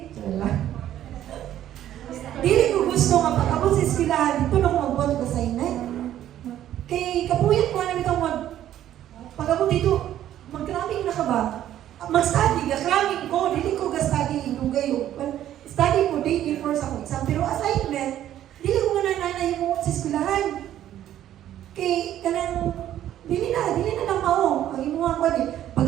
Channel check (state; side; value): quieter; left; 11.9 dB